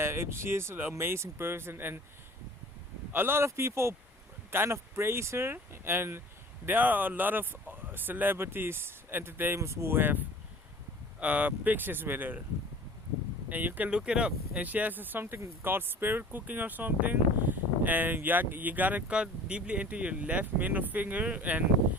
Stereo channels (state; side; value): normal; both; correlation 0.45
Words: she is an amazing person, and a lot of people kind of praise her, and there are a lot of celebrities, entertainers who have pictures with her, and you can look it up. And she has something called spirit cooking or something, and you gotta cut deeply into your left middle finger, and